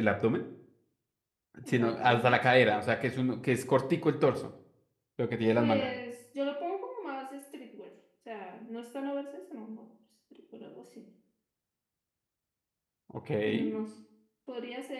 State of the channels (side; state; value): both; identical; correlation 1.00